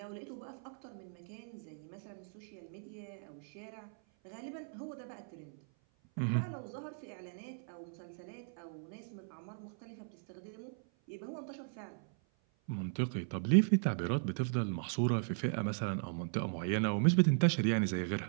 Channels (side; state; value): left; silent; 53 dB below the other